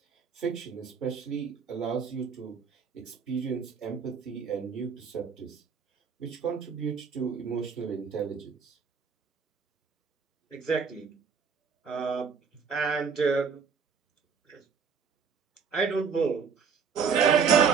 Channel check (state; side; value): quieter; left; 6.1 dB